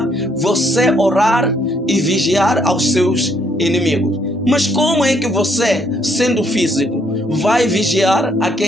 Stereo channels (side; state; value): both; normal; correlation 0.70